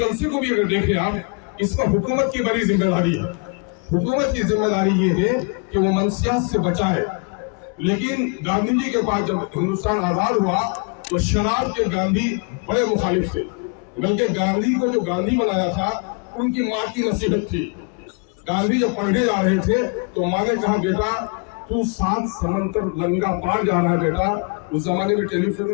کو بھی اگر دیکھیں آپ، اس پر حکومت کی بڑی ذمہ داری ہے. حکومت کی ذمہ داری یہ ہے کہ وہ منشیات سے بچائے. لیکن گاندھی جی کے پاس جب ہندوستان آزاد ہوا تو شراب کے گاندھی بڑے مخالف تھے، بلکہ گاندھی کو جو گاندھی بنایا تھا ان کی ماں کی نصیحت تھی. گاندھی جب پڑھنے جا رہے تھے تو ماں نے کہا بیٹا تو 7 سمندر لنگا پار جا رہا ہے بیٹا. اس زمانے میں ٹیلی فون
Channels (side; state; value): right; quieter; 33.4 dB